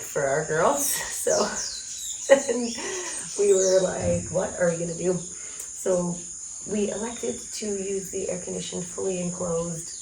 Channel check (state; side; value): identical; both; correlation 1.00